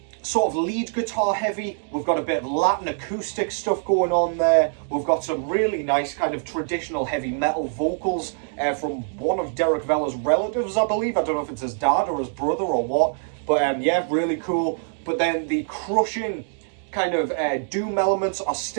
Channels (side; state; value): left; silent; digital silence